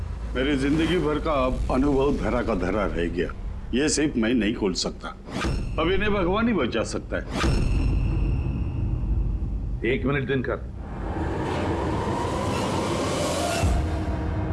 मेरी जिंदगी भर का अब अनुभव धरा का धरा रह गया। ये सिर्फ मैं नहीं खोल सकता, अब इन्हें भगवान ही बचा सकता है। 1 मिनट दिनकर,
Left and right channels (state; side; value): identical; both; correlation 1.00